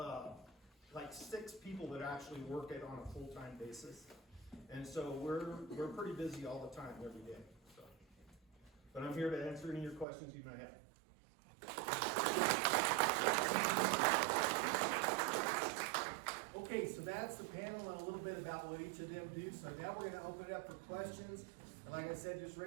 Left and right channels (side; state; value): left; drops out; at 10.1 s